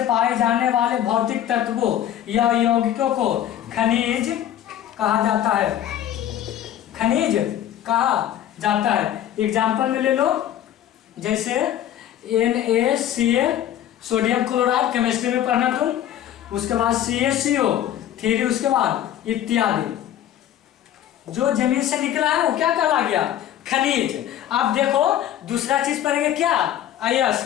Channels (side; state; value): right; quieter; 11.4 dB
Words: पाए जाने वाले भौतिक तत्वों या यौगिकों को खनिज कहा जाता है। एग्जाम्पल में ले लो, जैसे NaCl सोडियम क्लोराइड, केमिस्ट्री में पढ़ना तुम। उसके बाद CaCO3, उसके बाद इत्यादि। जो जमीन से निकला है वो क्या कहला गया? खनिज। अब देखो दूसरा चीज पढ़ेंगे क्या?